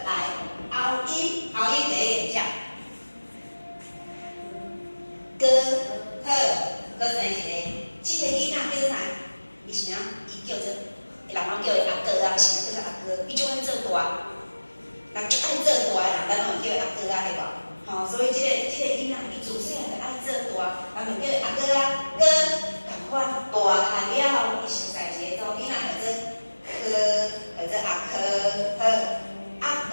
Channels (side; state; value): both; inverted; correlation -1.00